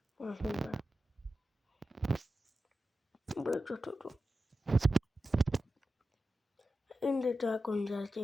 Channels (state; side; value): normal; both; correlation 0.92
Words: Böyle tuttum. Indi dragon